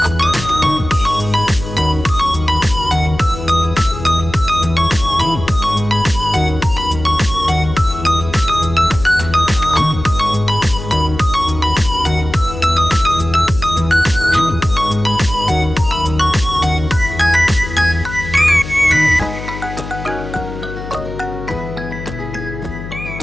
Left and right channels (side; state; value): left; noise; hum, 10 dB below the sound